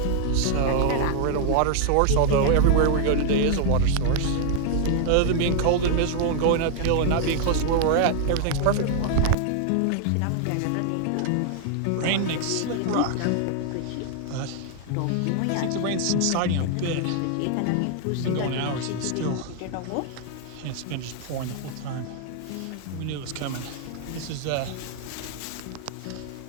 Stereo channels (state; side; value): different; both; correlation 0.00